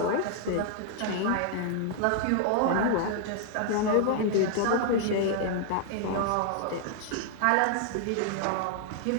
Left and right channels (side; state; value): both; different; correlation 0.00